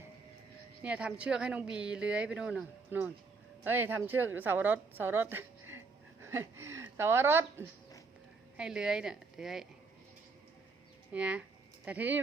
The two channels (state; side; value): quieter; left; 4.2 dB